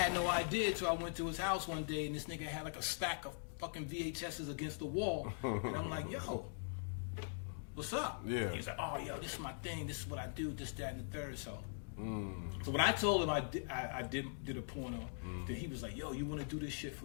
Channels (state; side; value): silent; right; digital silence